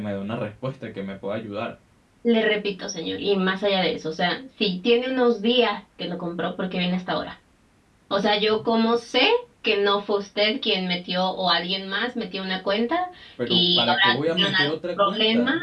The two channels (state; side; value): identical; both; correlation 1.00